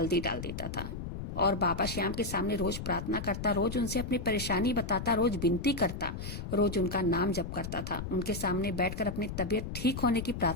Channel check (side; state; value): left; noise; rumble, 7 dB below the sound